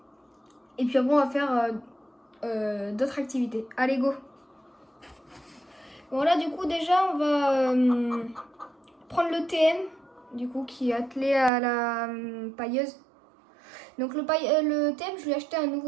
puis après on va faire d'autres activités. Allez, go! Bon là du coup déjà on va prendre le TM du coup qui est attelé à la pailleuse. Donc le TM, je lui ai acheté un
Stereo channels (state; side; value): drops out; left; at 11.5 s